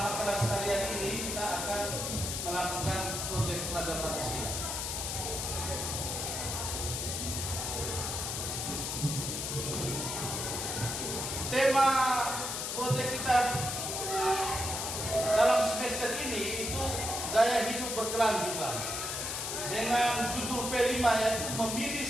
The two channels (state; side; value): noise; left; hiss, 3 dB below the sound